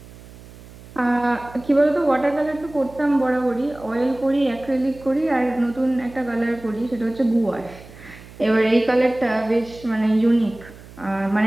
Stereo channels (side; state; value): right; noise; hum, 19 dB below the sound